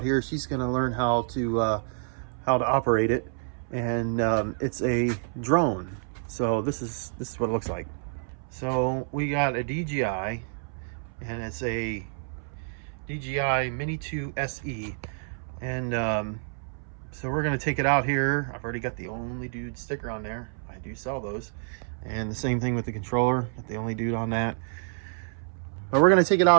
here. She's going to learn how to operate it. And it's a drone. So this is what it looks like. So we got a DJI, and it's a DJI Mini 2 SE. And so we're going to take it out here. I've already got the only dude sticker on there. I do sell those. And the same thing with the controller. Got the only dude on that. But we're going to take it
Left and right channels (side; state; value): left; silent; 59 dB below the other